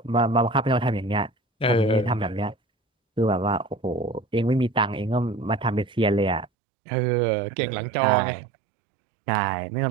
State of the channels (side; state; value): left; drops out; at 6.5 s